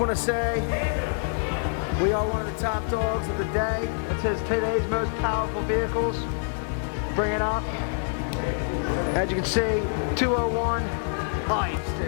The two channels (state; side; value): silent; right; 61 dB below the other